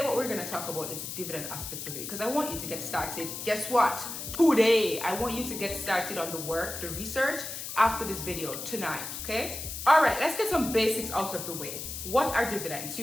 what we're going to talk about is the dividend aspect of it, because I want you to get started. Guess what? Today, I want you to get started on the work, the research after this video tonight, okay? All right, let's get some basics out of the way. What are dividends?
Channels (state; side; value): noise; left; hiss, 7 dB below the sound